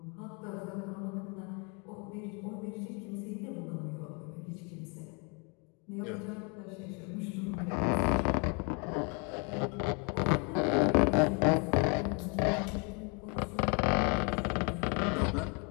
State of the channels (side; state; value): right; quieter; 34.6 dB